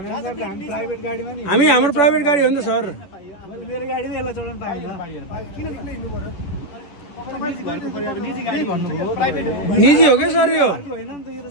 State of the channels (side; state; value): right; late; 10 ms